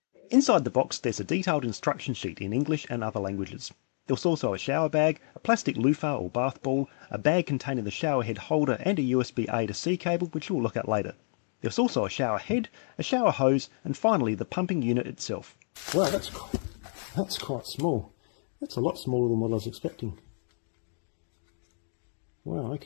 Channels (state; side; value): silent; right; digital silence